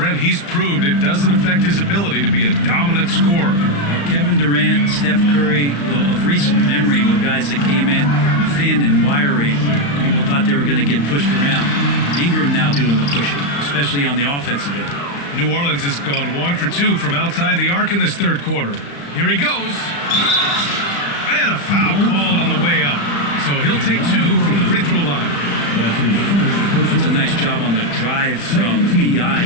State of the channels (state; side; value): late; right; 35 ms